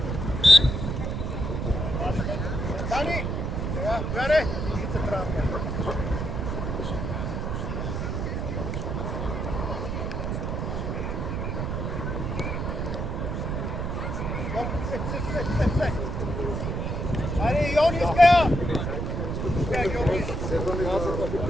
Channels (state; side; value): noise; right; rumble, 2 dB below the sound